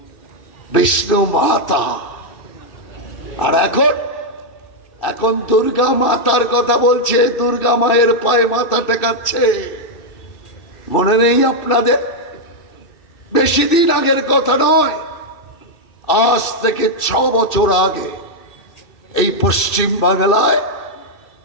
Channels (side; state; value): right; late; 2.7 ms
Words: বিষ্ণু মাতা। আর এখন দুর্গা মাতার কথা বলছে, দুর্গা মায়ের পায়ে মাথা টেকাচ্ছে। মনে নেই আপনাদের? বেশি দিন আগের কথা নয়, আজ থেকে 6 বছর আগে এই পশ্চিম বাংলায়